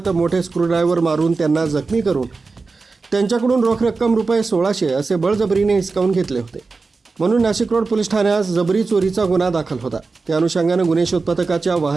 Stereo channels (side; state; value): left; quieter; 4.1 dB